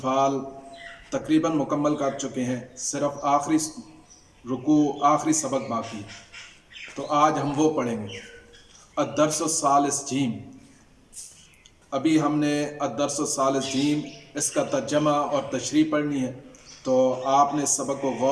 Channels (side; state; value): both; identical; correlation 1.00